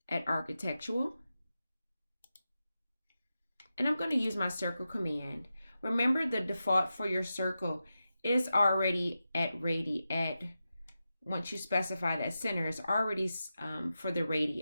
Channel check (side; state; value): both; inverted; correlation -0.91